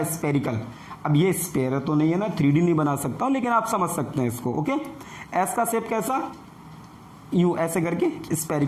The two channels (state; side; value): identical; both; correlation 1.00